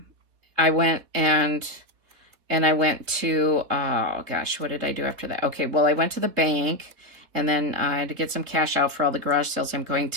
went to, oh gosh, what did I do after that? Okay, well, I went to the bank, and then I had to get some cash out for all the garage sales I'm going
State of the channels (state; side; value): late; left; 3.7 ms